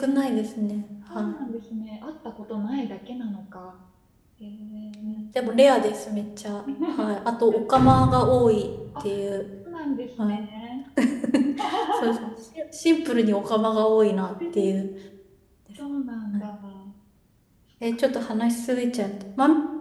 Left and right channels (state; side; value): identical; both; correlation 1.00